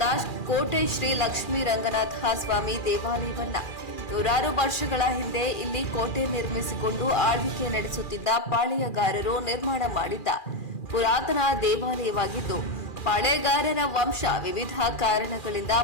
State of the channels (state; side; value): late; right; 2.4 ms